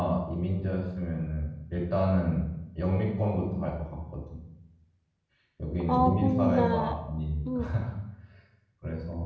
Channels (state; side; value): identical; both; correlation 1.00